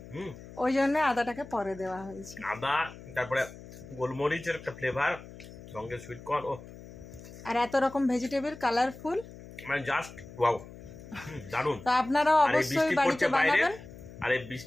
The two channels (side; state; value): left; noise; hum, 16 dB below the sound